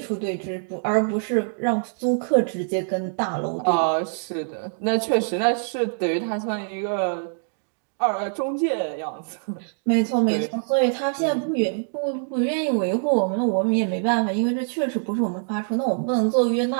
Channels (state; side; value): silent; left; digital silence